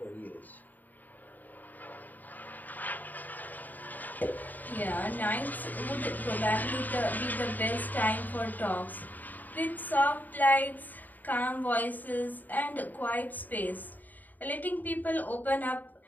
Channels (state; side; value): late; right; 0.085 ms